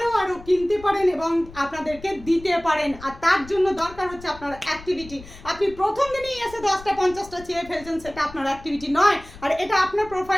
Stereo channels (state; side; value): noise; left; rumble, 18 dB below the sound